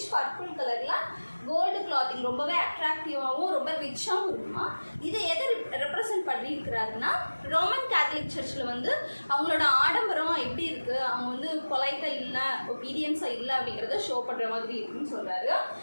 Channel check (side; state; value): both; inverted; correlation -1.00